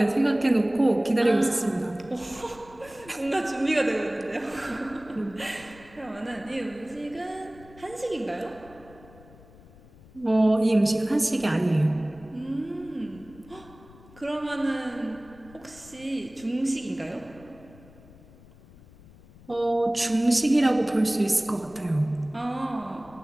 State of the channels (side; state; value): left; noise; rumble, 23 dB below the sound